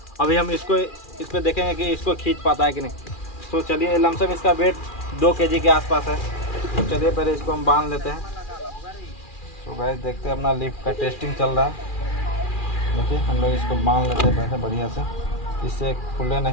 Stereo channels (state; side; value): late; right; 2.4 ms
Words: अभी हम इस पर देखेंगे कि इसको खींच पाता है कि नहीं। तो चलिए लमसम इसका वेट 2 kg के आसपास है। तो चलिए पहले इसको हम बांध लेते हैं। तो गाइस देखते हैं अपना लिफ्ट का टेस्टिंग चल रहा है। देखिए हम लोग इसको बांध लेते हैं पहले बढ़िया से, इससे खुले